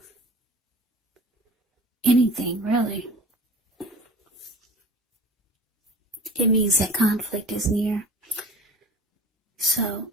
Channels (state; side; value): normal; both; correlation 0.40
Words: anything, really. It means that conflict is near. So